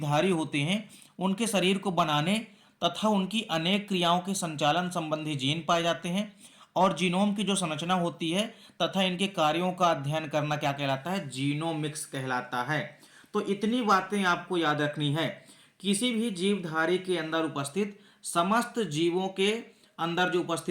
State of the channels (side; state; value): both; identical; correlation 1.00